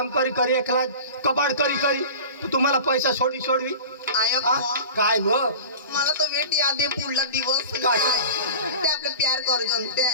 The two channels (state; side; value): inverted; both; correlation -0.36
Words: करी एकला कबाड करी तुम्हाला पैसा सोडवी काय व मला तो वेट याद आहे पुढला दिवस ते आपले प्यार करू जनते